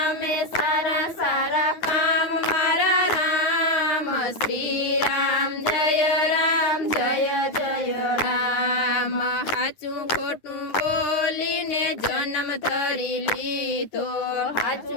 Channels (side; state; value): right; late; 9.5 ms